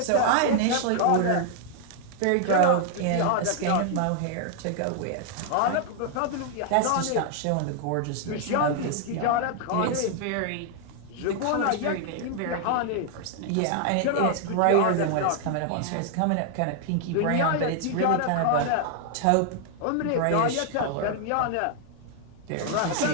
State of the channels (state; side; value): different; both; correlation 0.00